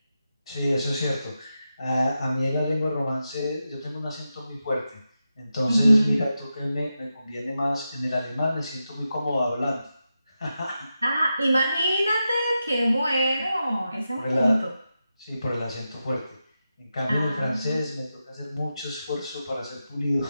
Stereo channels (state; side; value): inverted; both; correlation -0.89